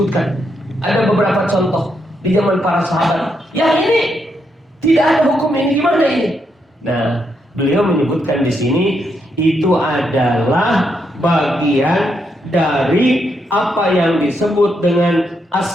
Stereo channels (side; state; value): both; normal; correlation 0.79